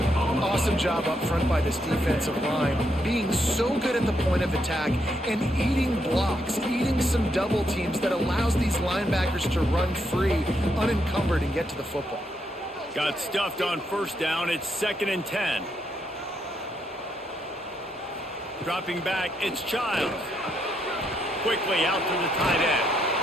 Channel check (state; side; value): normal; both; correlation 0.78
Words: Awesome job up front by this defensive line, being so good at the point of attack and eating blocks, eating some double teams that allows these linebackers to run free, unencumbered, and get to the football. Got stuffed on first down. It's 2nd and 10. Dropping back, it's Childs. Quickly out to the tight end.